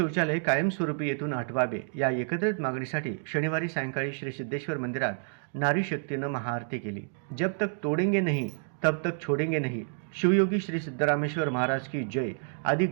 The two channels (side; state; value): left; silent; digital silence